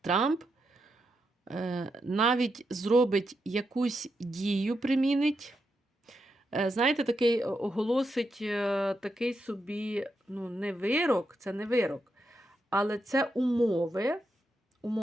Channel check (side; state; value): both; normal; correlation 0.84